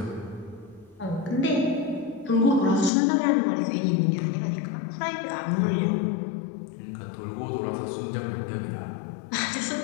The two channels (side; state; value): right; drops out; at 2.9 s